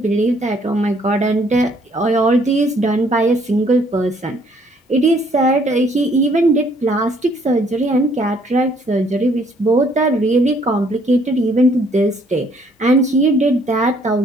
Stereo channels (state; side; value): normal; both; correlation 0.64